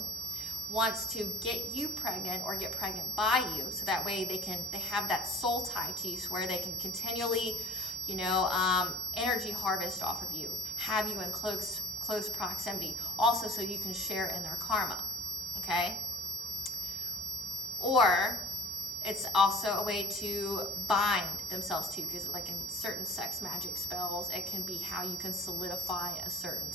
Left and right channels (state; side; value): normal; both; correlation 0.55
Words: wants to get you pregnant or get pregnant by you, so that way they have that soul tie to you, so where they can continually, energy harvest off of you, have you in close proximity, also so you can share in their karma, okay? Or it's also a way to bind themselves to, because like in certain sex magic spells, it can be how you can solidify a certain